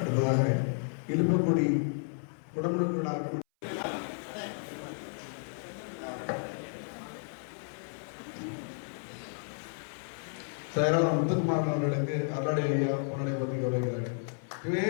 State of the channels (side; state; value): right; silent; 56 dB below the other